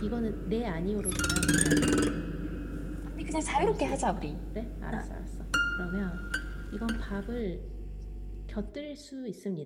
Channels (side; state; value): both; identical; correlation 1.00